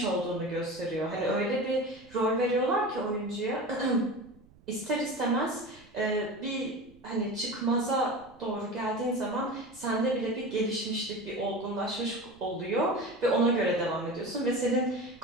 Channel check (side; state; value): right; noise; rumble, 27 dB below the sound